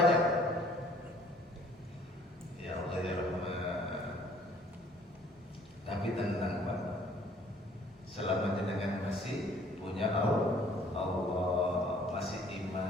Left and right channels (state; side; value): normal; both; correlation 0.57